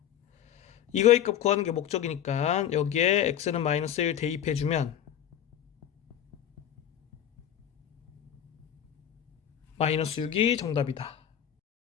이거의 값 구하는 게 목적이니까 여기에 x는 마이너스 1 대입해주면 마이너스 6이 정답이다.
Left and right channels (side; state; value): right; quieter; 10.2 dB